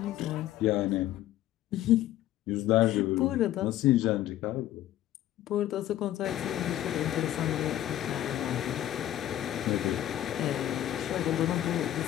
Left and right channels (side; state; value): right; quieter; 13.1 dB